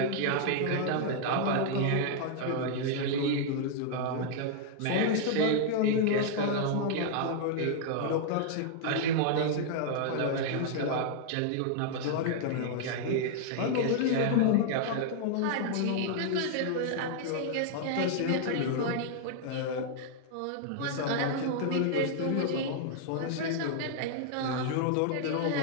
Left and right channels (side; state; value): both; different; correlation -0.01